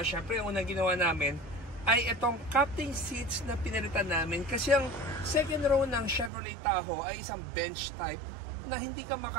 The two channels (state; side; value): drops out; left; at 6.3 s